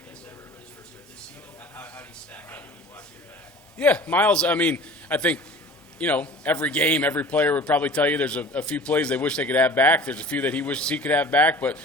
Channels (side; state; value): both; normal; correlation 0.43